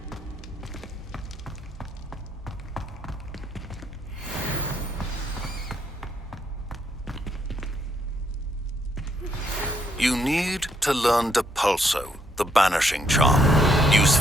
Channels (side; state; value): both; normal; correlation 0.73